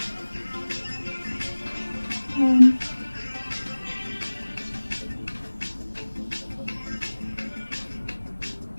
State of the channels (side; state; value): both; inverted; correlation -1.00